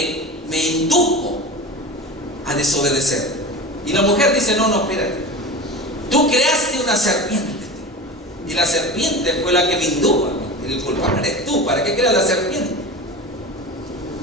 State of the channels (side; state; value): both; normal; correlation 0.31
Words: indujo a desobedecer. Y la mujer dice: no, espérate, tú creaste una serpiente, y la serpiente fue la que me indujo. El culpable eres tú. ¿Para qué creas la serpiente?